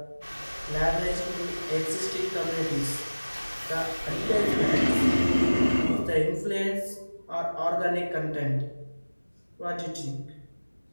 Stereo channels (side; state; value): both; inverted; correlation -1.00